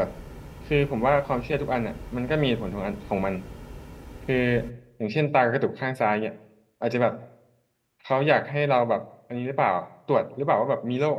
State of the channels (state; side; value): identical; both; correlation 1.00